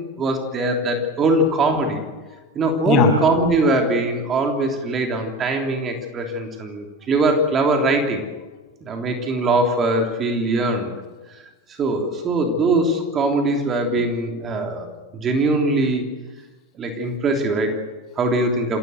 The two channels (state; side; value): normal; both; correlation 0.32